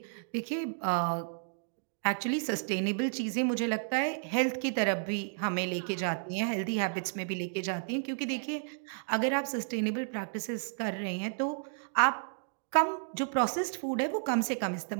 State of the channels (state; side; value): silent; left; digital silence